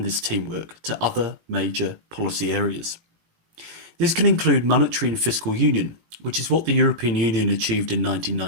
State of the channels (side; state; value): left; late; 18 ms